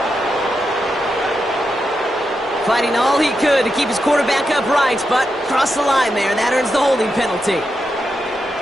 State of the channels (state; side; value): normal; both; correlation 0.86